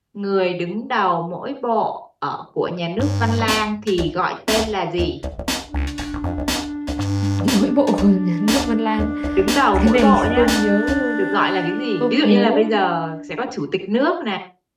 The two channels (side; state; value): both; identical; correlation 1.00